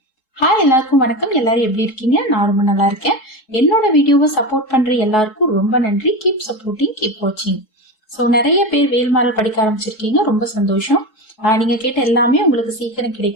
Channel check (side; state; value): right; late; 3.7 ms